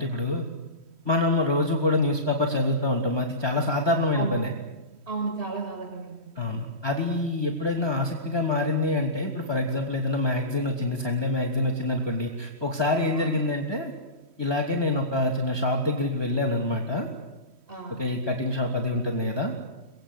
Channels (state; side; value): late; left; 3.1 ms